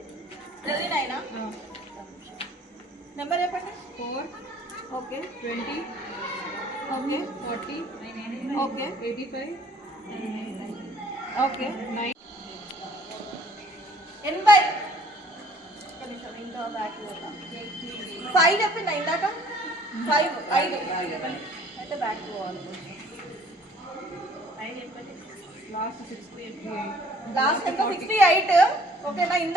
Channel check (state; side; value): normal; both; correlation 0.56